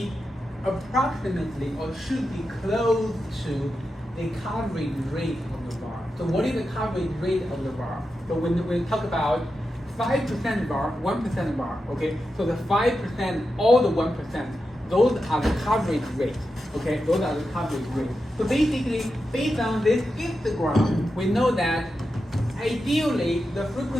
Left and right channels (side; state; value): both; normal; correlation 0.89